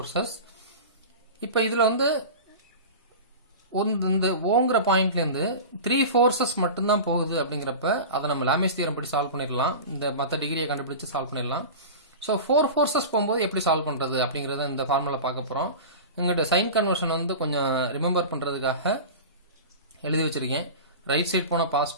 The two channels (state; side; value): inverted; both; correlation -0.31